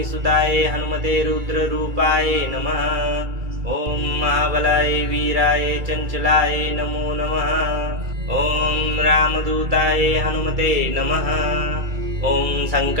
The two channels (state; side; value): late; left; 2.3 ms